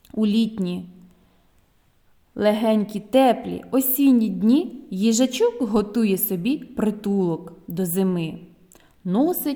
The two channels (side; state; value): both; identical; correlation 1.00